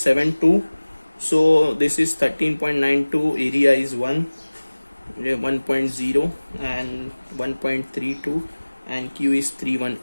So this is 13.92, area is 1.0 and 1.32 and Q is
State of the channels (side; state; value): both; inverted; correlation -1.00